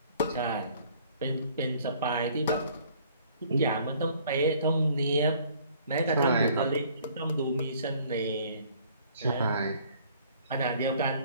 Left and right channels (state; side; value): inverted; both; correlation -0.58